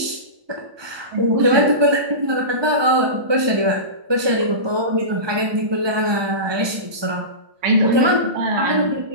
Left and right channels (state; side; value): late; left; 1.2 ms